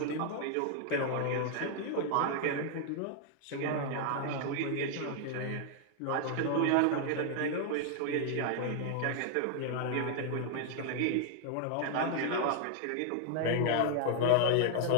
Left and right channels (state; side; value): different; both; correlation 0.00